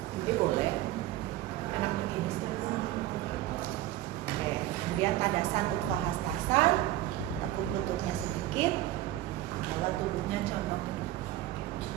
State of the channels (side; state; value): left; quieter; 14.8 dB